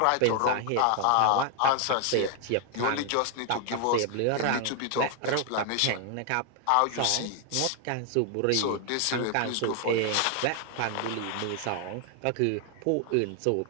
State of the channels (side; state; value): both; different; correlation 0.00